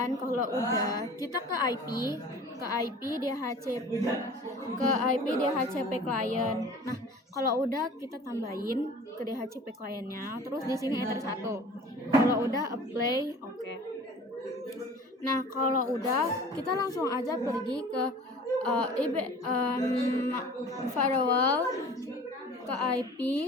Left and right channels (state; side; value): normal; both; correlation 0.44